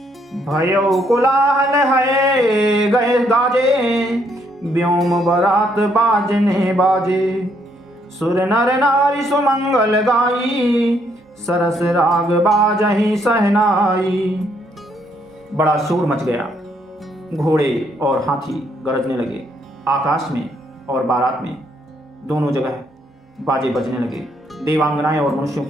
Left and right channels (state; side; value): normal; both; correlation 0.71